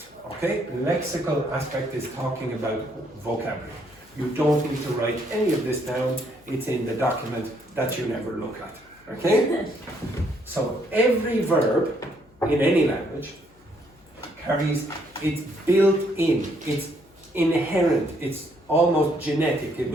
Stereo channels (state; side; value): noise; left; hum, 30 dB below the sound